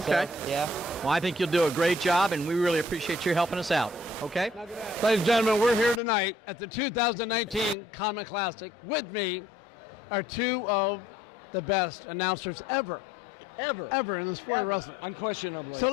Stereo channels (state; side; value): normal; both; correlation 0.61